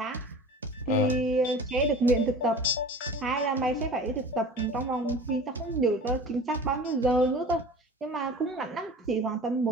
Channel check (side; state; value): both; normal; correlation 0.40